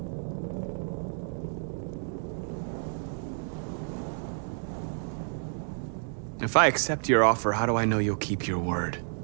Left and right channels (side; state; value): left; silent; 58 dB below the other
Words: If I accept your offer, how do I know you'll keep your word?